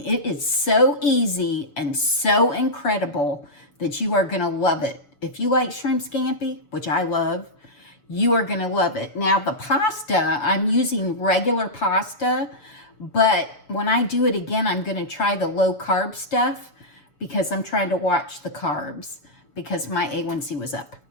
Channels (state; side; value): late; right; 7.0 ms